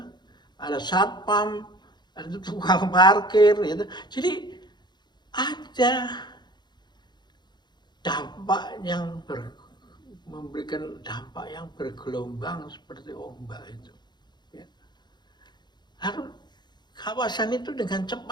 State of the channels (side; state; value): right; late; 0.21 ms